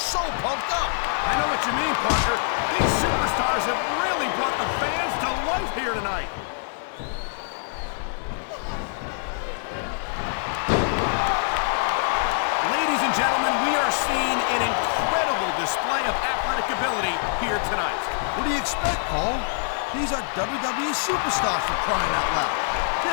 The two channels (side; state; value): right; silent; 62 dB below the other